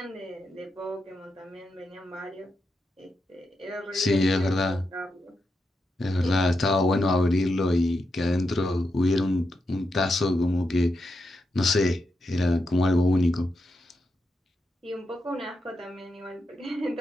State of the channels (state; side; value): normal; both; correlation 0.85